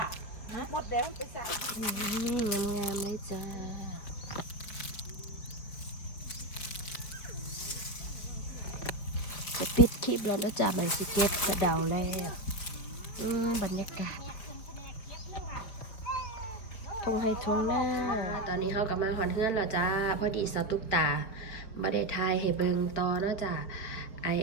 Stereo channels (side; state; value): right; late; 4.5 ms